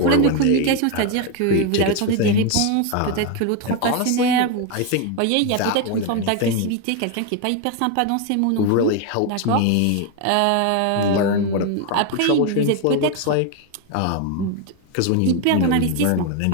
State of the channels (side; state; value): both; different; correlation 0.01